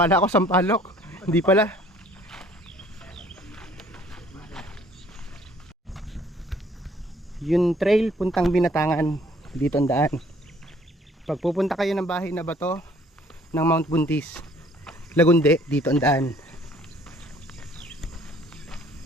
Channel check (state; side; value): normal; both; correlation 0.58